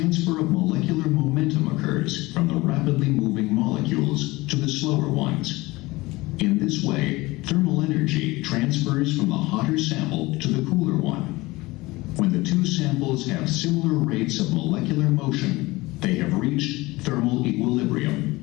of molecular momentum occurs from the rapidly moving molecules to the slower ones. In this way, thermal energy transfers from the hotter sample to the cooler one. When the two samples have similar rates of molecular motion, they have reached thermal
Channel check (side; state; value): right; quieter; 21.1 dB